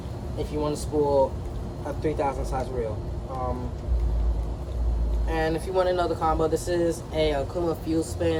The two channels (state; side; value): identical; both; correlation 1.00